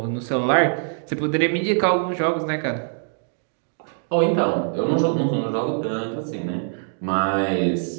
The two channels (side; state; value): left; silent; digital silence